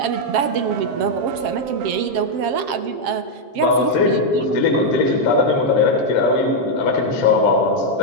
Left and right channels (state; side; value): late; left; 7.5 ms